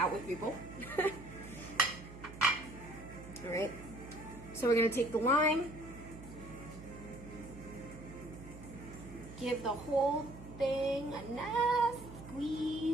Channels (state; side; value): noise; right; hum, 15 dB below the sound